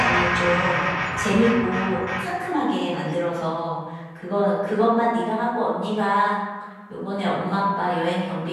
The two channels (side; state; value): both; identical; correlation 1.00